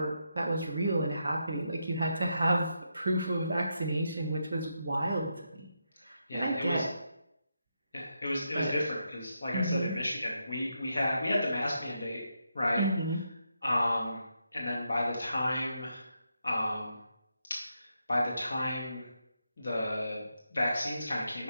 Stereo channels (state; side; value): inverted; both; correlation -0.83